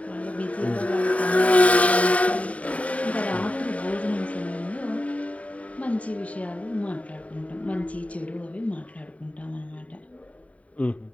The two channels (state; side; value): late; right; 0.067 ms